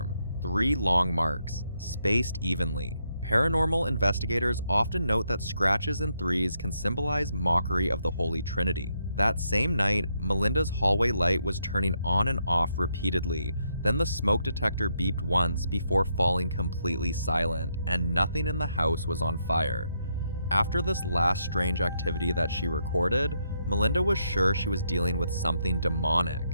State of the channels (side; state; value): both; inverted; correlation -0.78